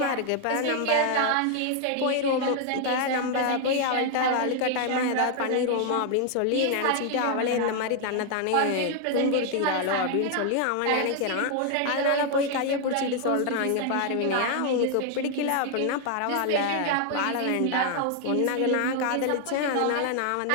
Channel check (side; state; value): both; different; correlation 0.00